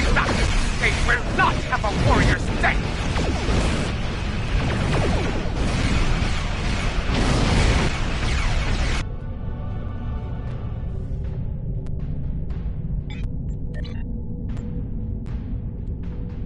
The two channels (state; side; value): identical; both; correlation 1.00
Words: They will not have a warrior's death!